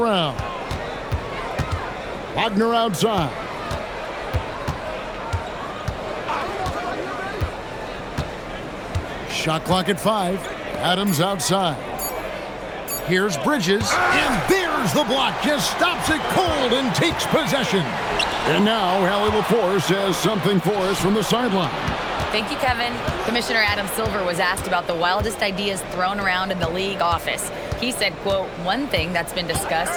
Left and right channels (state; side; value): identical; both; correlation 1.00